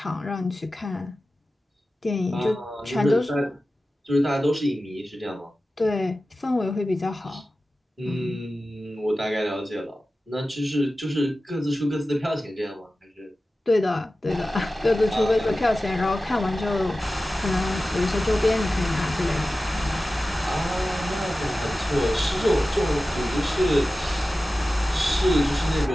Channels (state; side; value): normal; both; correlation 0.95